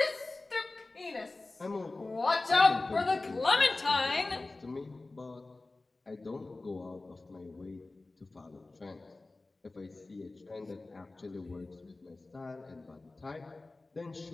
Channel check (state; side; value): quieter; right; 3.2 dB